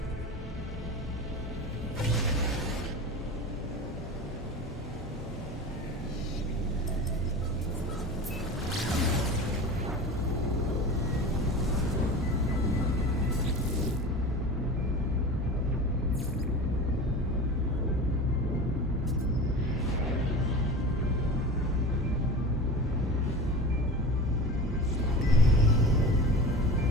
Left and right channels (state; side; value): normal; both; correlation 0.32